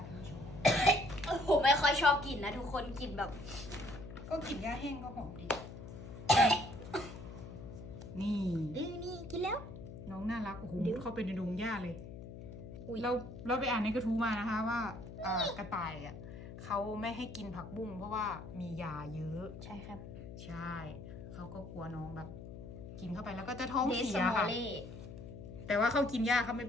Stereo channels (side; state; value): left; noise; hum, 12 dB below the sound